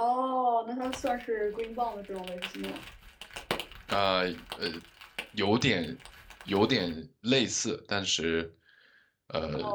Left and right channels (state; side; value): identical; both; correlation 1.00